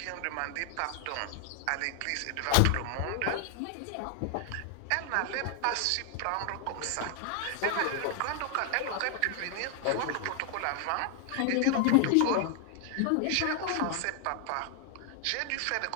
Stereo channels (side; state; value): both; different; correlation 0.00